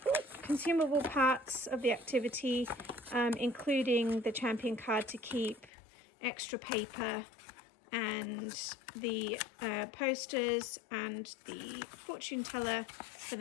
parts of the activity, including the champion card to keep, extra paper, and the posters and the fortune teller for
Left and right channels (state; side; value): drops out; right; at 5.7 s